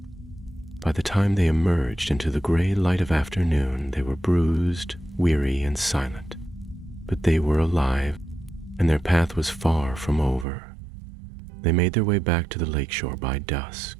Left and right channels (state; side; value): drops out; left; at 10.5 s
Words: By the time they emerged into the gray light of afternoon, they were bruised, weary, and silent. But they were alive, and their path was far from over. They made their way back to the lakeshore by